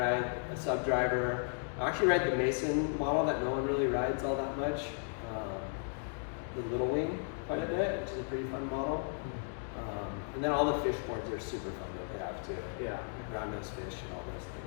a sub driver. I actually ride the Mason model that no one really rides all that much. The Little Wing quite a bit, which is a pretty fun model. And then all the fish boards are super fun that they have too. Yeah. Like round nose fish and all those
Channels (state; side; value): silent; right; 54 dB below the other